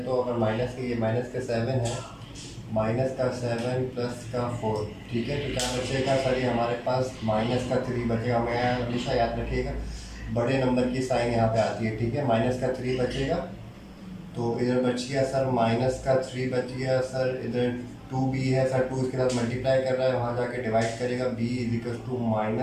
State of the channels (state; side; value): identical; both; correlation 1.00